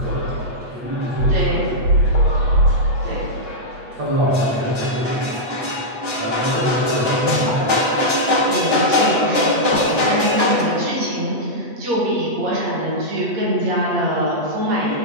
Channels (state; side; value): late; left; 8.3 ms